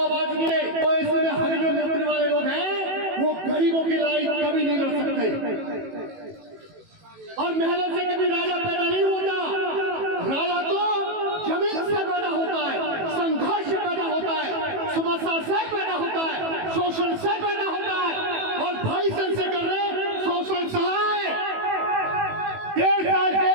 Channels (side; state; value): left; late; 18 ms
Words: मिले तो इसमें हम जो मुद्दे वाले लोग हैं वो गरीबों की लड़ाई कभी नहीं लड़ सकते और महलों से कभी राजा पैदा नहीं होता। राजा तो जमीन से पैदा होता है, संघर्ष से पैदा होता है, समस्या से पैदा होता है, शोषण से पैदा होता है। और भाई चंद्रशेखर ने शोषण सहा है, 1.5 साल